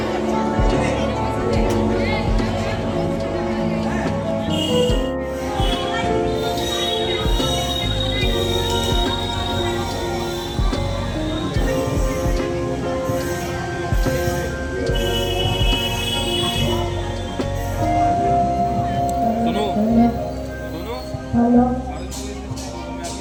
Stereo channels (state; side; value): identical; both; correlation 1.00